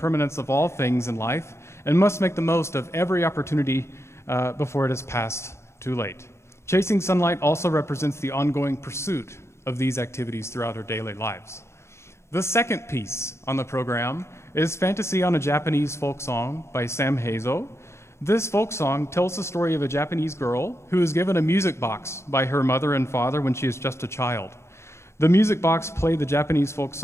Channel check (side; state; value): right; late; 0.13 ms